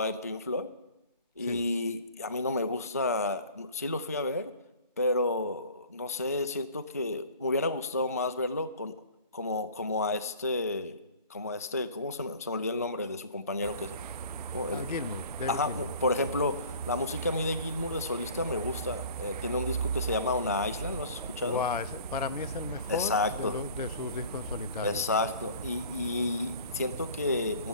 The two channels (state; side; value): inverted; both; correlation -0.46